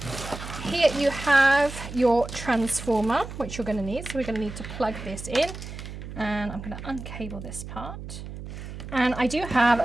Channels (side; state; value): right; noise; hum, 10 dB below the sound